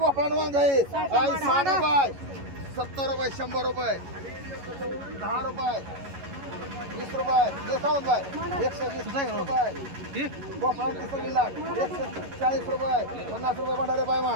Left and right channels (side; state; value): left; late; 11 ms